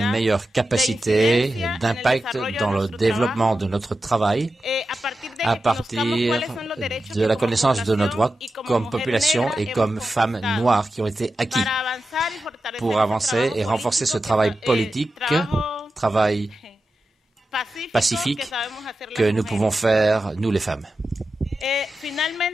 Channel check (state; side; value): normal; both; correlation 0.92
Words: meilleure capacité d'impact dans le développement de notre travail à partir de la connaissance de nos droits comme population et comme femmes noires qui ont été acquis pour avancer et renforcer ce travail politique, travail pacifique que nous pouvons faire, nous les femmes.